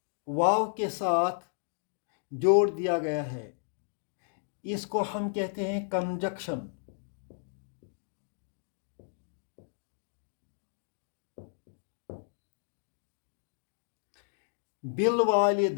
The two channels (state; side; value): silent; right; digital silence